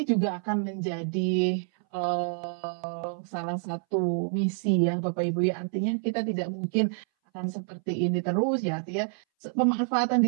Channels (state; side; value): silent; left; 59 dB below the other